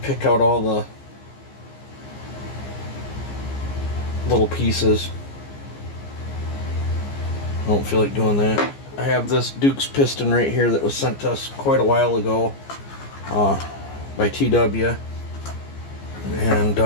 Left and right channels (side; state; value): right; late; 15 ms